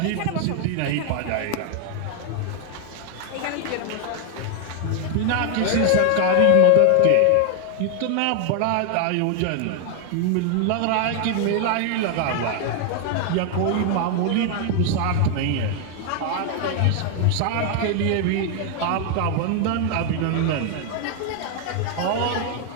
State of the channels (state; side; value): different; both; correlation 0.00